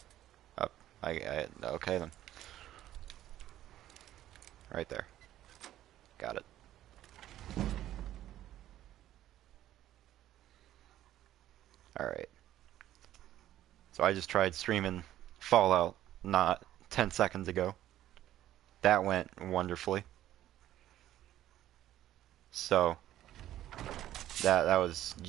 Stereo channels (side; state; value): left; quieter; 13.0 dB